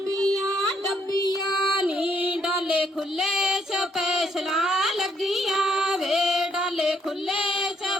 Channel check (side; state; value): both; normal; correlation 0.72